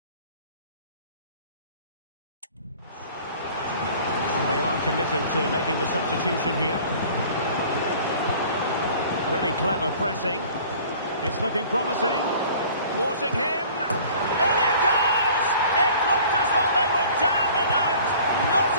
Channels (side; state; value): both; inverted; correlation -0.48